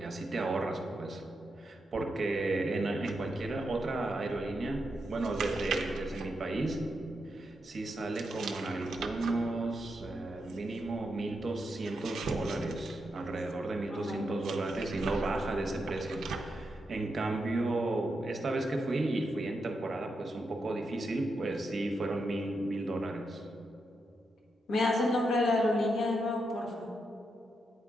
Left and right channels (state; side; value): normal; both; correlation 0.84